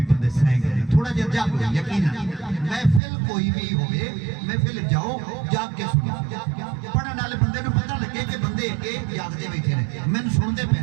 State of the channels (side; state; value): left; drops out; at 3.0 s